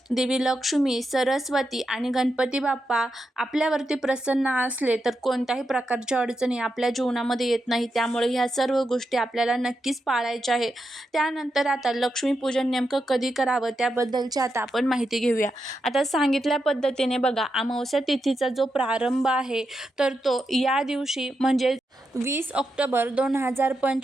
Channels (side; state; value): both; normal; correlation 0.86